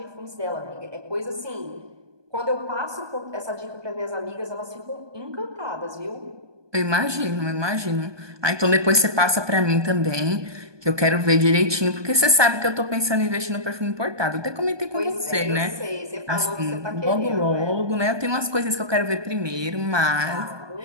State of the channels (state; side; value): late; left; 1.2 ms